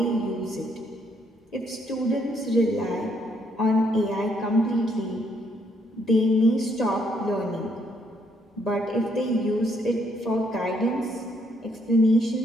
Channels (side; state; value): both; normal; correlation 0.71